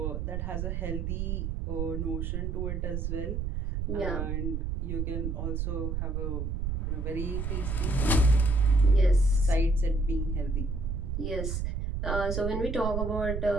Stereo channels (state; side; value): noise; right; rumble, 2 dB below the sound